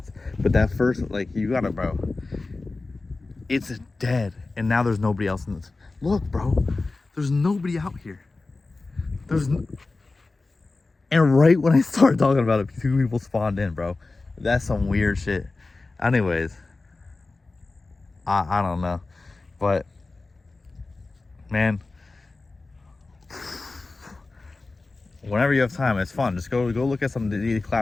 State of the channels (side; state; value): right; quieter; 3.5 dB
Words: But that first, like, you gotta, bro, it's dead. And now there's nobody else in this. Look, bro, there's nobody out here. And right when I started talking about it, 2 people spawned in, bro. That's some weird shit. Anyways, I don't know. But, man, whenever you have time, it's fun. Just go look at some